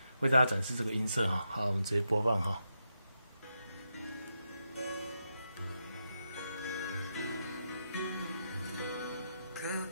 为大家展示这个音色好，我们直接播放告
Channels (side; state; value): both; inverted; correlation -0.84